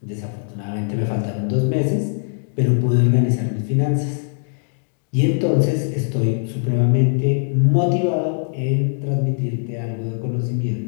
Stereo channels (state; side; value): silent; right; digital silence